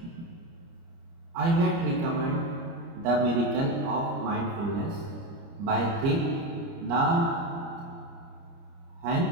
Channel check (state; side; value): late; left; 30 ms